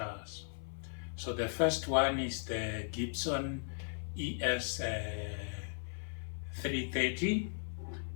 So the first one is the Gibson ES330,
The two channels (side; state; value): right; silent; 53 dB below the other